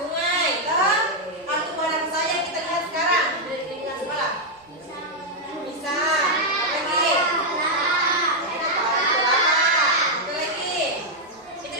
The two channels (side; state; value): both; normal; correlation -0.02